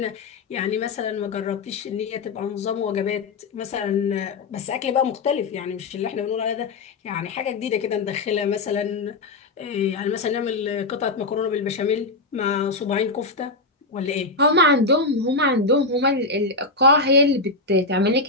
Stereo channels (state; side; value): quieter; right; 3.3 dB